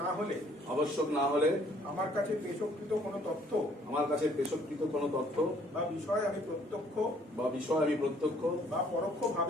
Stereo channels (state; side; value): normal; both; correlation 0.61